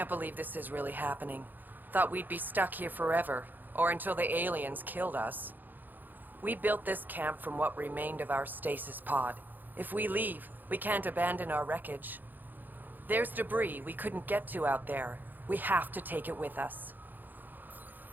believe this is really happening. Thought we'd be stuck here forever, or until the aliens killed us. We built this camp from what remained of our stasis pod. If we leave, we can't abandon our wreckage. There's debris we couldn't get to out there. We have to take it with us.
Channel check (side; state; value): left; late; 0.087 ms